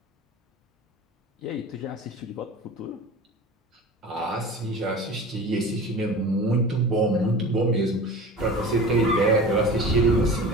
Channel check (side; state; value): both; normal; correlation 0.36